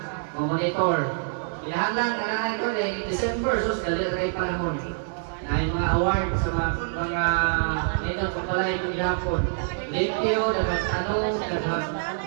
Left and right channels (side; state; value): left; silent; digital silence